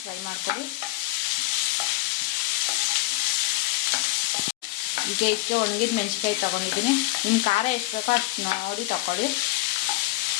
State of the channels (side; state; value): right; quieter; 19.1 dB